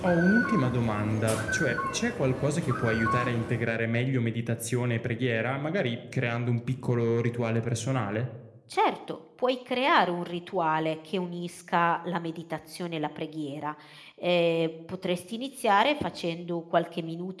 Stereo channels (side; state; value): both; identical; correlation 1.00